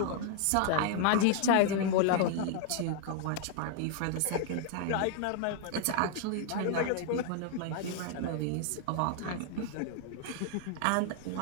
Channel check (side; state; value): both; different; correlation 0.00